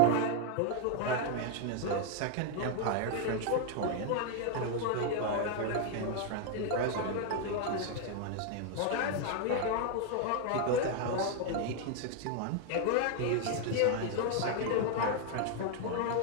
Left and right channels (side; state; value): both; different; correlation 0.01